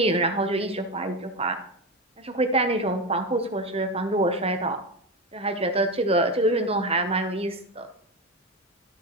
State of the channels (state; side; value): normal; both; correlation 0.17